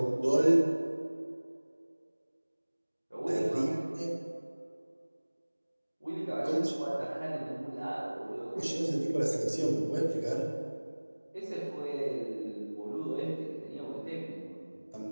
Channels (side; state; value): both; inverted; correlation -1.00